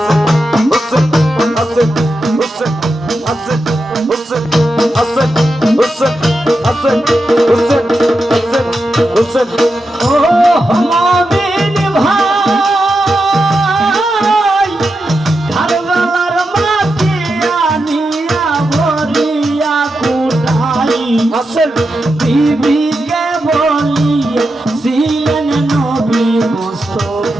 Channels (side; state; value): both; normal; correlation 0.88